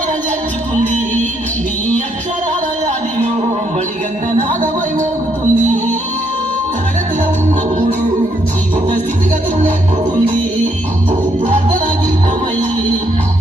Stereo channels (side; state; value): both; normal; correlation 0.73